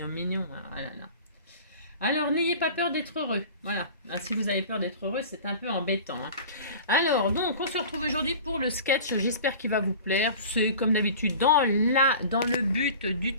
mignon. Hein. Ah là là. Alors, n'ayez pas peur d'être heureux. Voilà. Ah, si vous avez peur d'être heureux, c'est un peu embêtant. Hein. Alors, donc, on se retrouve aujourd'hui pour le sketch. J'espère qu'il va vous plaire. C'est comme d'habitude dans le but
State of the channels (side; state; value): both; inverted; correlation -0.39